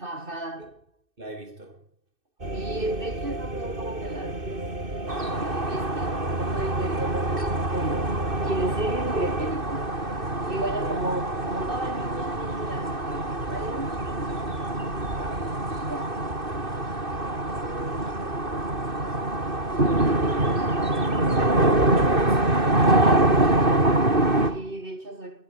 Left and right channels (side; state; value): left; late; 2.6 ms